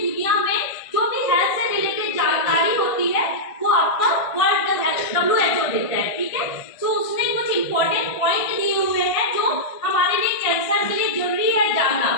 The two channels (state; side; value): late; right; 1.5 ms